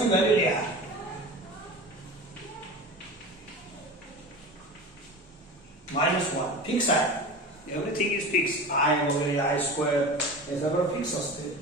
व्हॅल्यू लिहा. -1 फिक्स आहे. Everything is fix. आय वगैरे आय स्क्वेअर हे सगळं फिक्स असते.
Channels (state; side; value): normal; both; correlation 0.32